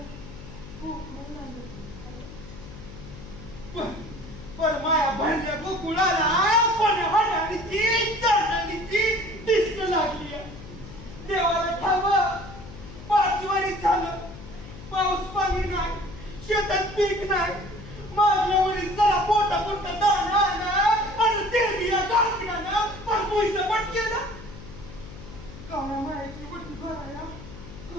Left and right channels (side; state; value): left; noise; hum, 15 dB below the sound